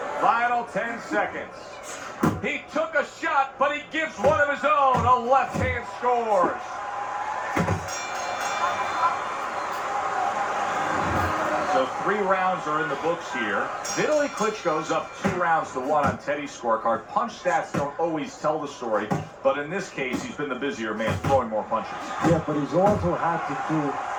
Final 10 seconds. He took a shot, but he gives one of his own. A left hand scores. So 3 rounds are in the books here. Vitali Klitchco's up 2-1 on Teddy's scorecard. Punch stats don't always tell the story, but in this case, he's been the busier man, throwing more punches. Yeah, but he's also had to do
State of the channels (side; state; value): both; identical; correlation 1.00